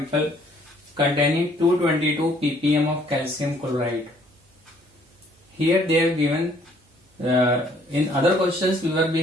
containing 222 ppm of calcium chloride. Here they have given, in other questions we were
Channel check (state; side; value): normal; both; correlation 0.62